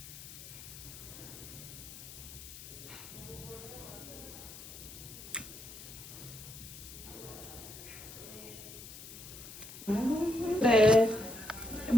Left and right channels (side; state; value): left; noise; hiss, 13 dB below the sound